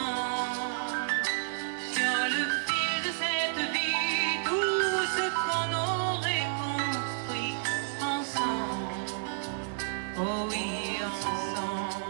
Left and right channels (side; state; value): left; silent; 57 dB below the other